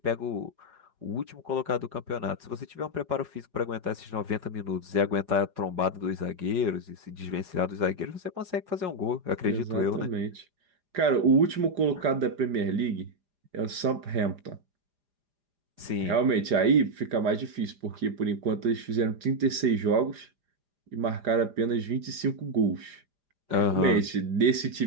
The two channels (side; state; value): left; late; 4.9 ms